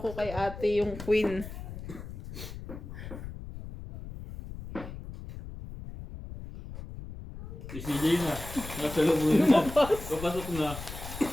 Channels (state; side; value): noise; left; rumble, 11 dB below the sound